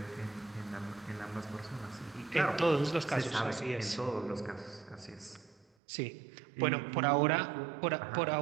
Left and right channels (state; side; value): drops out; left; at 5.7 s